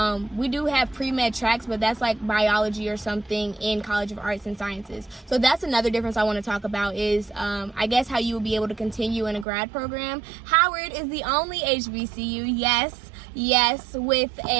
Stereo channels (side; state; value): left; drops out; at 9.5 s